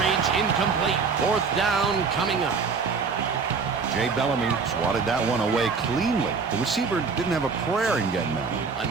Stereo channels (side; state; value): left; quieter; 5.0 dB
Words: incomplete. 4th down coming up. Jay Bellamy swatted that one away cleanly. The receiver didn't have a prayer in getting that one. A